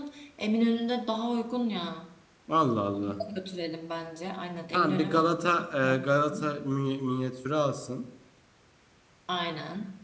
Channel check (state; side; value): identical; both; correlation 1.00